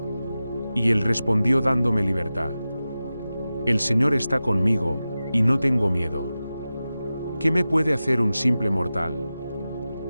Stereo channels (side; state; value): both; inverted; correlation -0.94